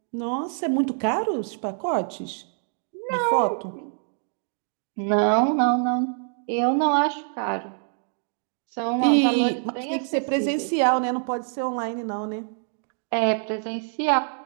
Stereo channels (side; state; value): left; silent; digital silence